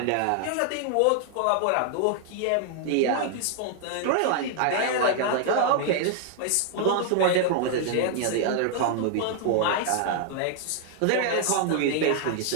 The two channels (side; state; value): both; different; correlation 0.00